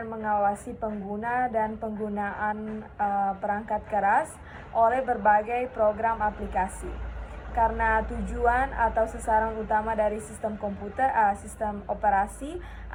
mengawasi pengguna dan penggunaan perangkat keras oleh berbagai program aplikasi. Karena tujuan atau sasaran utama dari sistem sistem operasi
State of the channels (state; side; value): identical; both; correlation 1.00